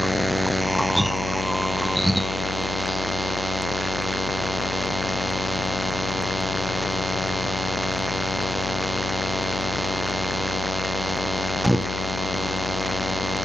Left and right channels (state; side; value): noise; left; hum, 5 dB below the sound